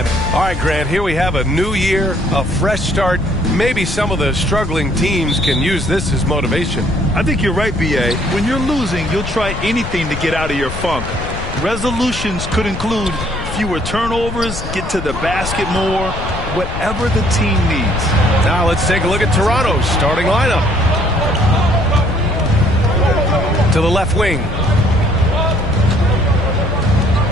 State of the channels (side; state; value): left; noise; rumble, 7 dB below the sound